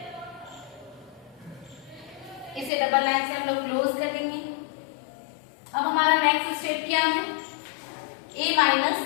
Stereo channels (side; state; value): right; drops out; at 2.7 s